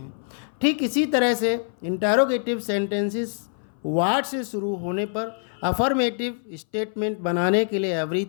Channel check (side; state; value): right; silent; 59 dB below the other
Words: ठीक इसी तरह से इंटरोगेटिव सेंटेंसेस व्हाट से शुरू होने पर अफर्मेटिव स्टेटमेंट बनाने के लिए